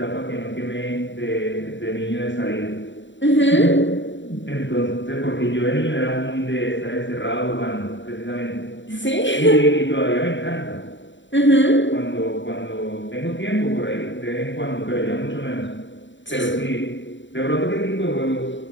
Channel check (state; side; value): late; right; 0.54 ms